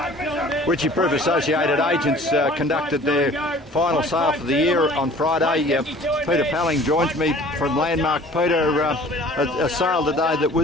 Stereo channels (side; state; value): both; normal; correlation 0.49